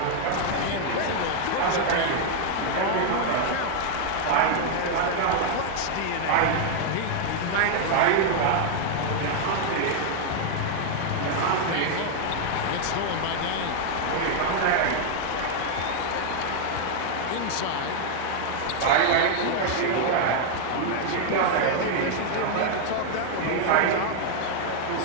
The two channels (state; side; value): different; both; correlation 0.00